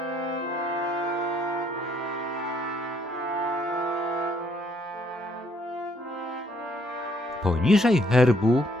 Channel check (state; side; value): normal; both; correlation 0.68